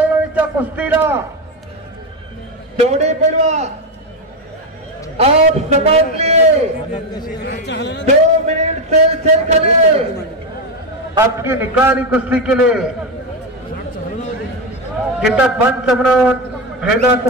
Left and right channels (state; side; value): normal; both; correlation 0.11